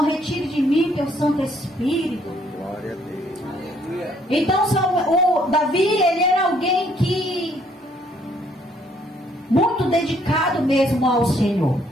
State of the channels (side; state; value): both; normal; correlation 0.66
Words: retire de mim teu Santo Espírito. Glória a Deus. Então o Davi, ele era alguém que muito dedicado mesmo ao Senhor.